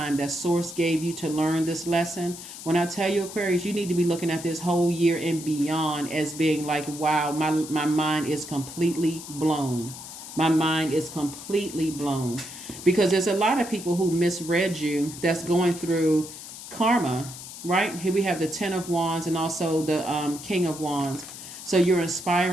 that source gave you to learn this lesson. When I tell you, Aquarius, you need to be looking at this whole year and beyond as being like, wow, my mind is completely blown. My mind is completely blown. Because there's a lot of people who misread you that's going through karma, right? Here we have the 10 of Wands and also the King of Wands. So you're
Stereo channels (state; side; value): noise; left; hiss, 12 dB below the sound